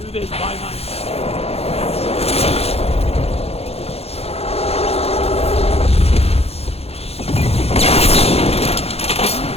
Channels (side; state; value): right; late; 0.29 ms